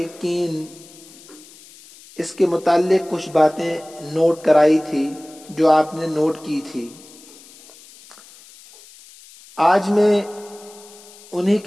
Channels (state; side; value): noise; left; hiss, 22 dB below the sound